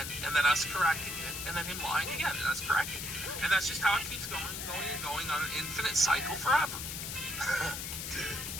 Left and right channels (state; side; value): noise; left; hiss, 5 dB below the sound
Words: and then us correcting it, and then him lying again, and us correcting it. And that's just how it keeps going and going and going on an infinite cycle forever.